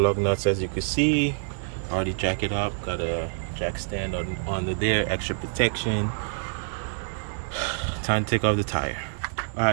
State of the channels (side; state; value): left; silent; digital silence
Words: nuts, as you can see. Already jack it up, got a jack stand on there, extra protection. Time to take off the tire.